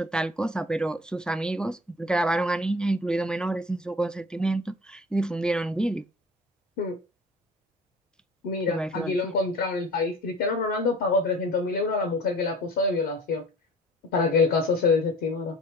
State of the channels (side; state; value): both; normal; correlation 0.45